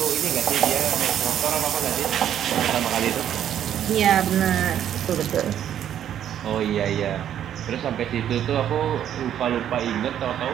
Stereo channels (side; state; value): left; quieter; 10.3 dB